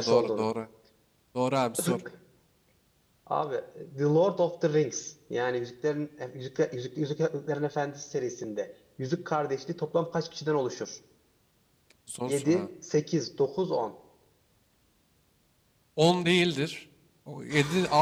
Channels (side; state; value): both; identical; correlation 1.00